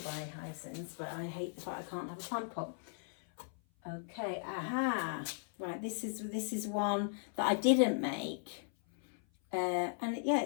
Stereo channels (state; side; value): silent; right; 53 dB below the other